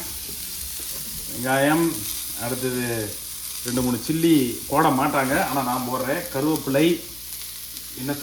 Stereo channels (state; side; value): noise; left; hum, 23 dB below the sound